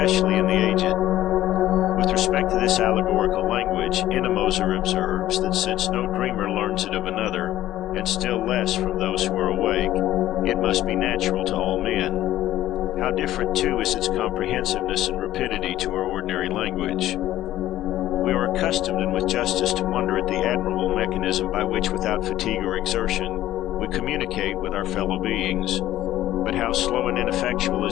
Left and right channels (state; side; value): quieter; right; 14.0 dB